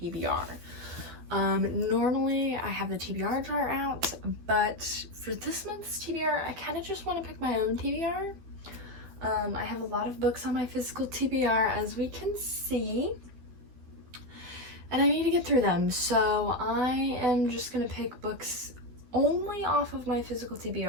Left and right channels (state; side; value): late; left; 12 ms